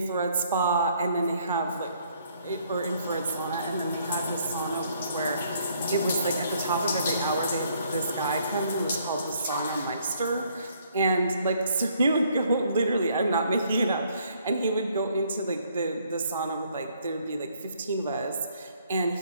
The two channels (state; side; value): inverted; both; correlation -0.66